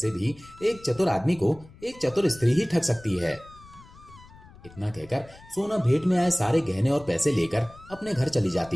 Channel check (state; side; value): noise; left; rumble, 22 dB below the sound